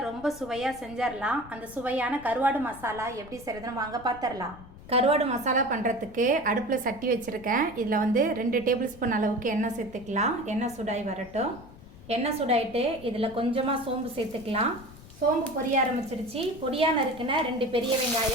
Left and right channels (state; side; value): noise; left; rumble, 19 dB below the sound